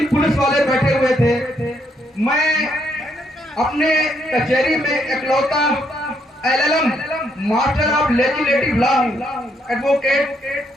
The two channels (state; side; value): normal; both; correlation 0.74